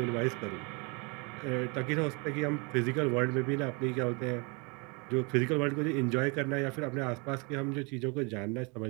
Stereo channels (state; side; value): quieter; left; 31.2 dB